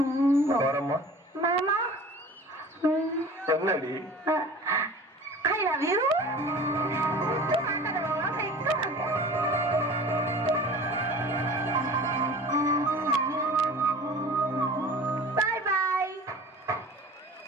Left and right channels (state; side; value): normal; both; correlation 0.42